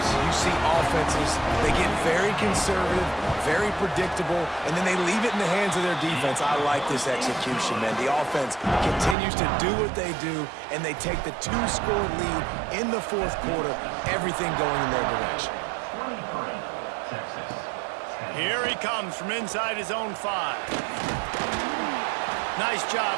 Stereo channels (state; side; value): drops out; left; at 9.2 s